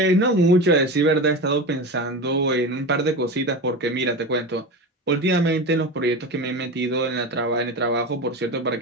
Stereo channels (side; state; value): both; normal; correlation 0.26